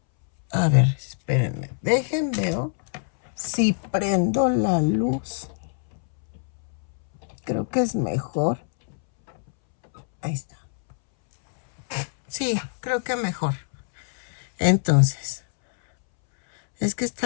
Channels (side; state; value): right; silent; 62 dB below the other